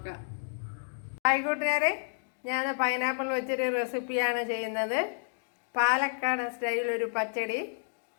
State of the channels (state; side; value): silent; right; digital silence